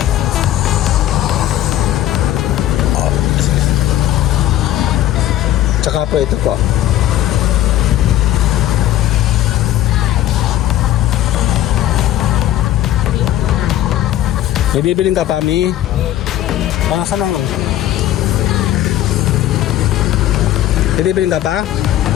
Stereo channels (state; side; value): quieter; right; 13.1 dB